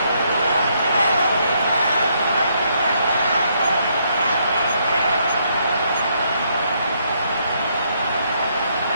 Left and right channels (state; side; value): inverted; both; correlation -0.73